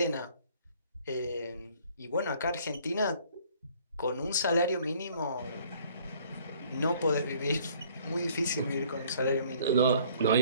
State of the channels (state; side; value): inverted; both; correlation -0.58